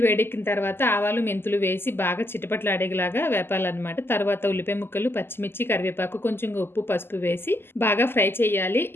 వేడెక్కిన తర్వాత ఆవాలు, మెంతులు వేసి బాగా చిటపటలాడేలాగా వేపాలన్నమాట. తర్వాత ఉల్లిపాయ ముక్కలు, పచ్చిమిర్చి, కరివేపాకు, కొంచెం ఉప్పు, పసుపు వేసి బాగా ఫ్రై చేయాలి.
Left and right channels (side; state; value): right; late; 0.11 ms